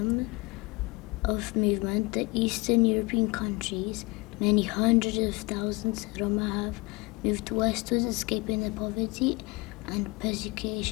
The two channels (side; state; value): right; quieter; 25.3 dB